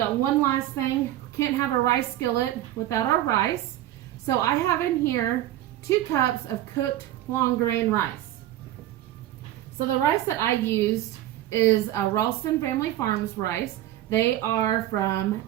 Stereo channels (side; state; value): left; quieter; 13.8 dB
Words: one last thing. Can't have a rice skillet without our rice. So I have in here 2 cups of cooked long grain rice. So the rice that I used is a Ralston Family Farms rice. They are from